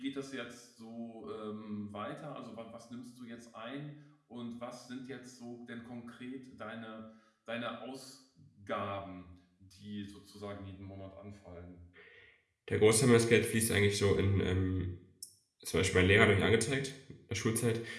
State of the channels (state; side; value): identical; both; correlation 1.00